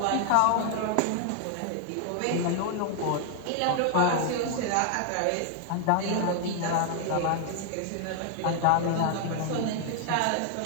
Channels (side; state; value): both; different; correlation 0.00